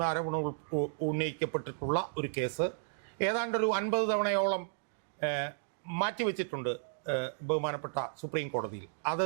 ആരോപണം ഉന്നയിക്കപ്പെട്ടിട്ടുള്ള ഒരു കേസ് ഏതാണ്ടൊരു 50 തവണയോളം മാറ്റിവെച്ചിട്ടുണ്ട് ബഹുമാനപ്പെട്ട സുപ്രീം കോടതിയിൽ.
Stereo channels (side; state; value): left; silent; digital silence